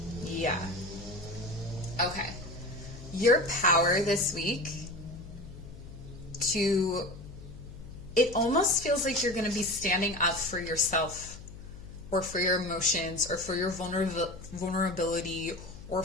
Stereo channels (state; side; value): noise; left; hum, 15 dB below the sound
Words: Yeah. Okay. Your power this week it almost feels like you're going to be standing up for yourself or for your emotions or for your vulnerability or